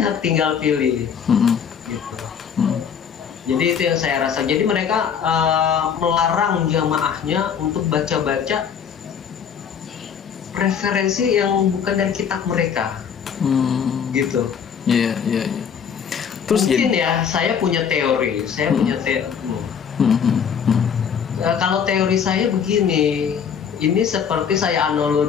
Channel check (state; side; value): quieter; right; 7.4 dB